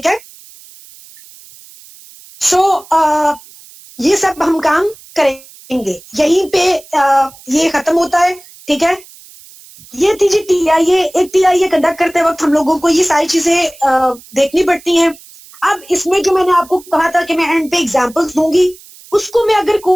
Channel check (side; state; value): right; noise; hiss, 22 dB below the sound